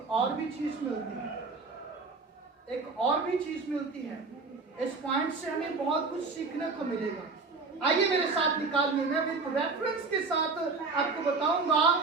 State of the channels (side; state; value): left; quieter; 4.1 dB